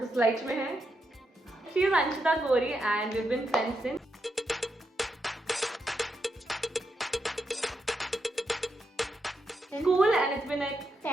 स्लाइड में है। She is Anshita Gauri and we have been friends since school and it's been like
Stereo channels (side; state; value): both; normal; correlation 0.83